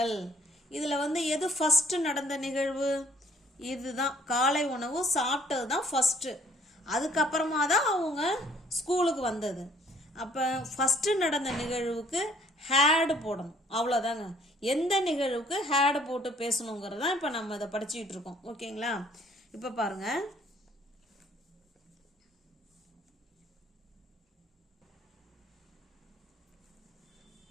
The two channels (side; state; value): both; normal; correlation 0.60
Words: இதில் வந்து எது ஃபஸ்ட்டு நடந்த நிகழ்வு? இதுதான், காலை உணவு சாப்பிட்டது தான் ஃபஸ்ட்டு. அதுக்கப்புறமா தான் அவங்க ஸ்கூலுக்கு வந்தது. அப்போ ஃபஸ்ட்டு நடந்த நிகழ்வுக்கு ஹேடு போடணும், அவ்வளோதாங்க. எந்த நிகழ்வுக்கு ஹேடு போட்டு பேசணுங்கிறது தான் இப்போ நம்ம இதை படிச்சுக்கிட்டு இருக்கோம். ஓகேங்களா? இப்போ பாருங்க,